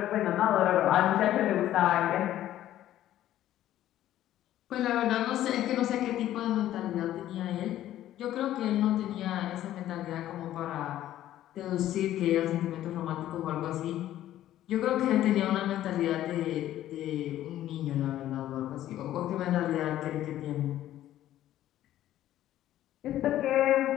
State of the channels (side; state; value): right; quieter; 13.0 dB